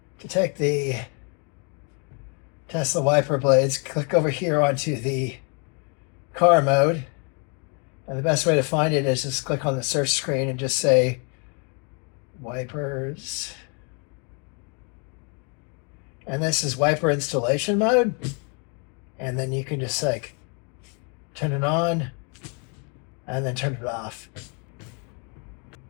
To take the Tesla wiper blades, click over here onto the car mode. And the best way to find it is just click on the search screen and just say wipers. And this is wiper installation mode. And then you can just like turn it on and then turn it off.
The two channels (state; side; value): quieter; right; 36.4 dB